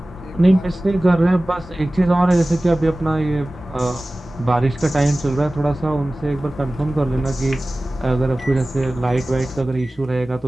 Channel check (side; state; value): both; normal; correlation 0.97